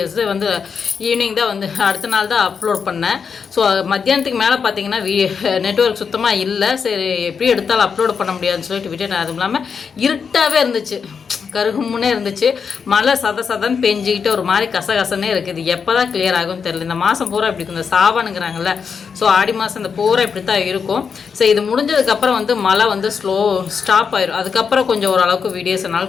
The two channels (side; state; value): right; quieter; 6.2 dB